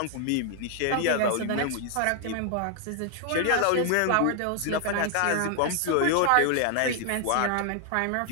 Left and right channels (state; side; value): different; both; correlation 0.00